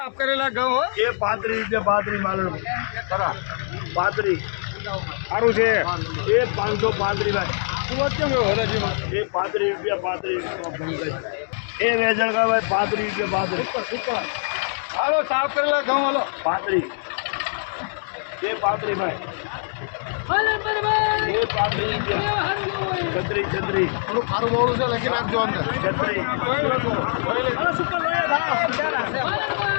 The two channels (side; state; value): right; silent; digital silence